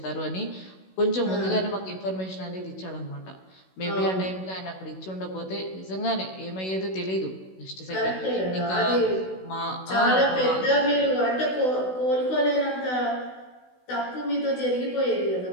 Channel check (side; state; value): right; late; 16 ms